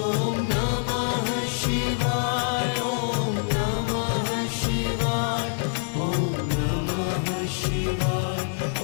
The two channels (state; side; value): silent; right; digital silence